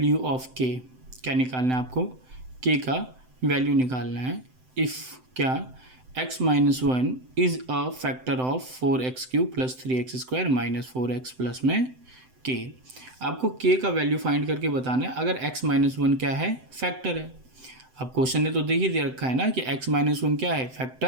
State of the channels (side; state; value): left; late; 7.8 ms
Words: ऑफ के। क्या निकालना है आपको? के का वैल्यू निकालना है। इफ़ क्या x minus 1 is a factor of 4x³ plus 3x² minus 4x plus में k। आपको k का वैल्यू फाइंड करके बताना है अगर x माइनस 1 क्या है, फैक्टर है। अब क्वेश्चन ने तो देख ही दे रखा है ना कि x माइनस 1 क्या है,